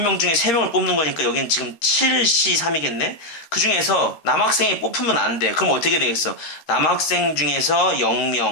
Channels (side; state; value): right; late; 13 ms